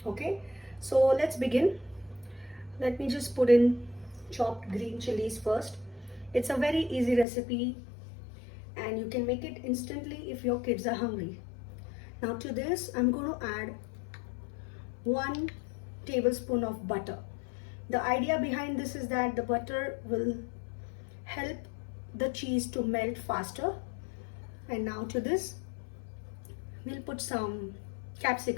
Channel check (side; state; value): right; drops out; at 7.2 s